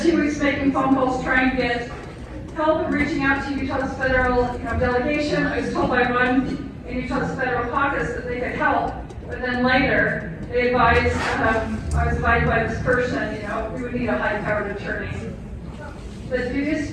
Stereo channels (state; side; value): identical; both; correlation 1.00